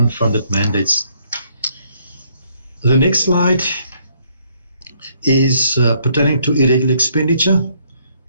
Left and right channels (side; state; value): both; inverted; correlation -0.68